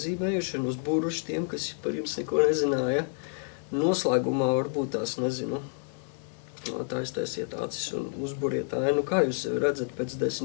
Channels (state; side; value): silent; right; 59 dB below the other